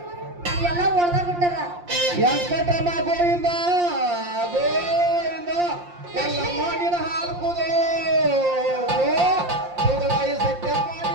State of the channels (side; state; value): left; late; 5.7 ms